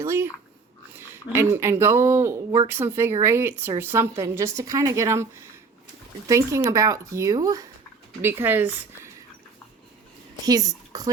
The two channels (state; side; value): quieter; left; 4.6 dB